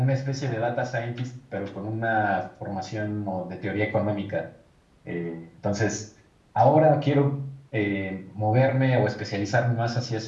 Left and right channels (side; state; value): both; identical; correlation 1.00